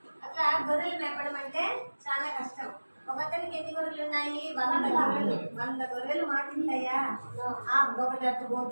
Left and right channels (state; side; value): inverted; both; correlation -1.00